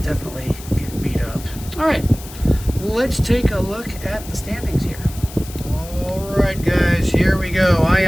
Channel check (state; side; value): noise; left; hiss, 16 dB below the sound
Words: getting beat up. All right, let's take a look at the standings here. All right, guys, here we go. I